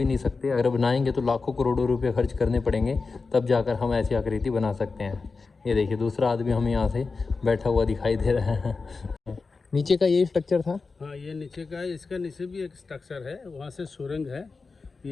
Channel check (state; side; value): quieter; right; 4.3 dB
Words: नहीं सकते। अगर बनाएंगे तो लाखों करोड़ों रुपए खर्च करने पड़ेंगे, तब जाकर हम ऐसी आकृति बना सकते हैं। ये देखिए दूसरा आदमी हमें यहाँ से बैठा हुआ दिखाई दे रहा है। नीचे का ये स्ट्रक्चर था। हाँ ये नीचे का है, इसका नीचे भी एक स्ट्रक्चर है, वहाँ से सुरंग है।